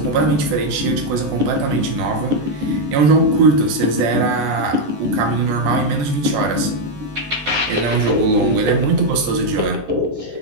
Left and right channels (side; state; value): left; late; 14 ms